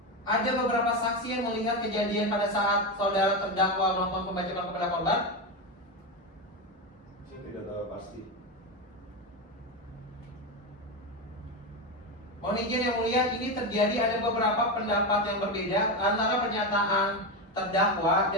ada beberapa saksi yang melihat kejadian pada saat saudara terdakwa melakukan pembacokan kepada korban? Saya tidak tahu pasti. Mohon izin yang mulia, ini terjadi ada beberapa pendapat yang berbeda antara pernyataan terdakwa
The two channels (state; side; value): normal; both; correlation 0.14